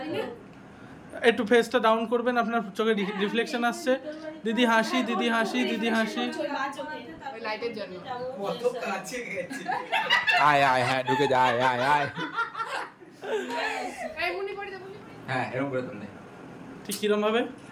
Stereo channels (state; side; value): identical; both; correlation 1.00